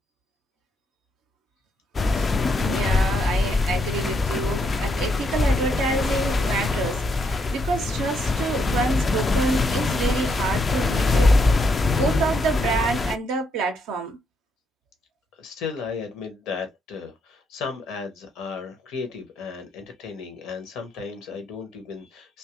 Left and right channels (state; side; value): normal; both; correlation 0.76